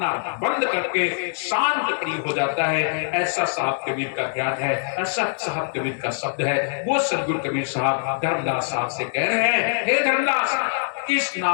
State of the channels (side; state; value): right; silent; digital silence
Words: बंद करके शांत प्रिय हो जाता है। ऐसा साहब कबीर का ज्ञान है, ऐसा साहब कबीर का शब्द है। वो सदगुरु कबीर साहब धर्मदास साहब से कह रहे हैं, हे धर्मदास, किस